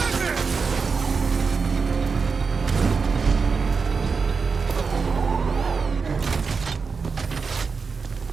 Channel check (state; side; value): quieter; left; 5.1 dB